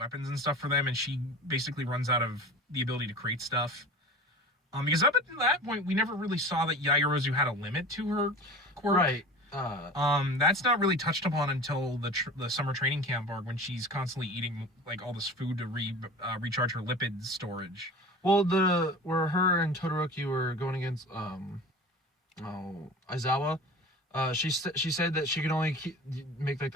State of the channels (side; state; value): both; normal; correlation 0.36